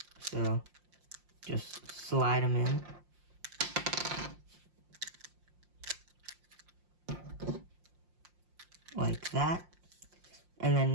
So just slide them in. Like that. And then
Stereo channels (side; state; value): left; late; 5.7 ms